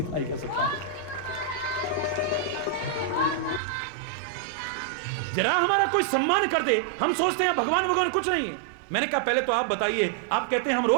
ही कह सकता हूं। जरा हमारा कोई सम्मान कर दे, हम सोचते हैं भगवान कुछ नहीं। मैंने कहा पहले तो आप बताइए, आप कहते हैं हम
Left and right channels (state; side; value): drops out; left; at 3.6 s